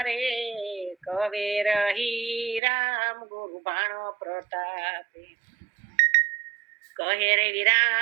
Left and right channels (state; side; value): drops out; left; at 2.6 s